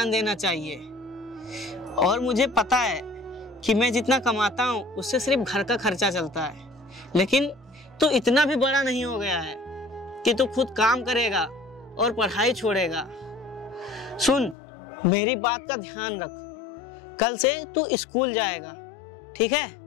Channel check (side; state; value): right; drops out; at 14.6 s